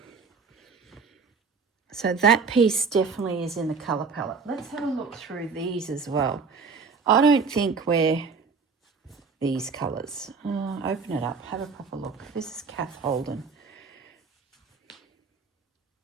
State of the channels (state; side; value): quieter; left; 5.0 dB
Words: So that piece definitely is in the colour palette. Let's have a look through these as well. I don't think we're these colours. Open it up, have a proper look. This is Kath Holden.